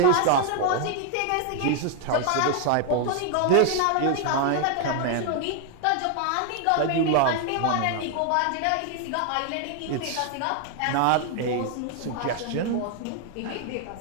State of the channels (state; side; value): different; both; correlation 0.00